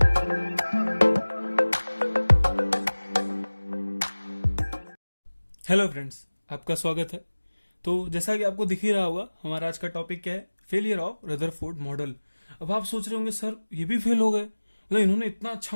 friends, आपका स्वागत है। तो जैसा कि आपको दिख ही रहा होगा, हमारा आज का टॉपिक क्या है? Failure of Rutherford model. अब आप सोच रहे होंगे सर ये भी फेल हो गए, मतलब इन्होंने इतना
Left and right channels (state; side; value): inverted; both; correlation -1.00